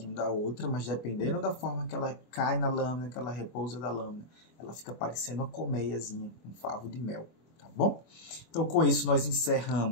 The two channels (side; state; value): right; late; 24 ms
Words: da outra, mas dependendo da forma que ela cai na lâmina, que ela repousa da lâmina, ela fica parecendo uma colmeiazinha, um favo de mel, tá bom? Então, com isso, nós